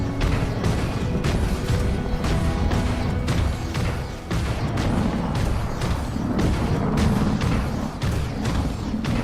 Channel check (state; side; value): identical; both; correlation 1.00